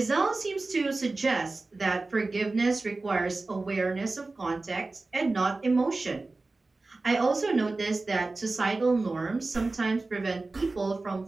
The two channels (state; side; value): quieter; left; 3.4 dB